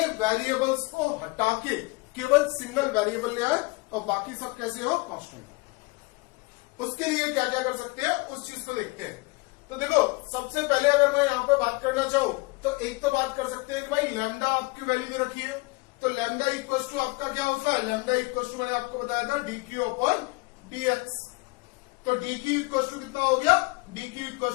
वेरिएबल्स को हटा के केवल सिंगल वेरिएबल ले आए और बाकी सब कैसे हो कांस्टेंट। उसके लिए क्या क्या कर सकते हैं उस चीज को देखते हैं। तो देखो सबसे पहले अगर मैं यहां पर बात करना चाहूं तो एक तो बात कर सकते हैं कि भाई लैम्डा आपकी वैल्यू दे रखी है, तो लैम्डा इक्वल टू आपका क्या होता है, लैम्डा इक्वल टू मैंने आपको बताया था डीक्यू अपॉन डीएक्स। तो डीक्यू इक्वल टू कितना हो गया, dq equal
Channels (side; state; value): right; quieter; 25.6 dB